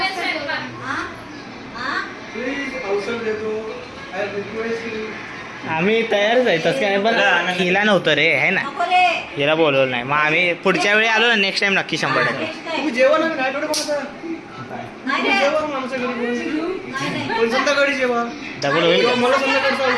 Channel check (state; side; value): identical; both; correlation 1.00